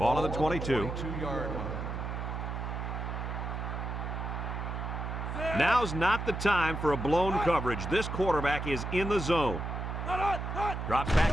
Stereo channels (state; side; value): noise; right; hum, 4 dB below the sound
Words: on the 22. 22-yard line. Now's not the time for a blown coverage. This quarterback is in the zone. Drops back